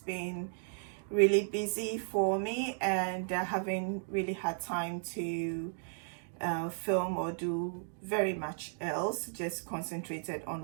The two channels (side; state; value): left; silent; digital silence